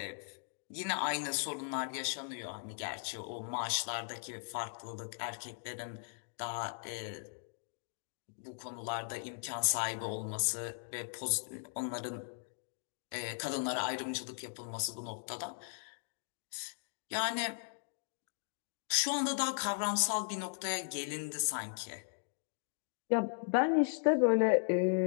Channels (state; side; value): silent; right; digital silence